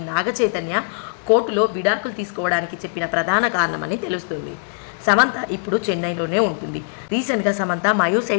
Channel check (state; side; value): silent; right; digital silence